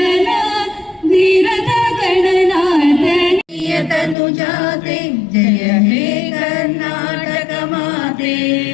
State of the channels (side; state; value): right; drops out; at 4.2 s